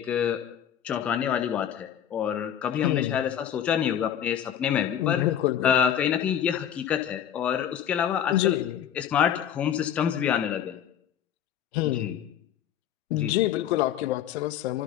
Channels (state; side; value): quieter; right; 9.8 dB